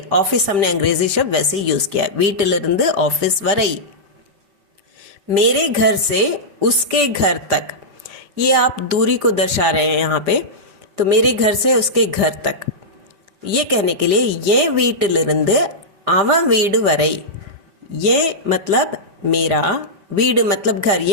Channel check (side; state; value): left; late; 5.0 ms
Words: ऑफिस हमने अंग्रेजी शब्द वैसे यूज किया, वीटिलिरिंद ऑफिस वरई। मेरे घर से उसके घर तक, ये आप दूरी को दर्शा रहे हैं यहाँ पे। तो मेरे घर से उसके घर तक, ये कहने के लिए ये வீட்டிலிருந்து அவன் வீடு வரை, ये मतलब मेरा, வீடு मतलब घर,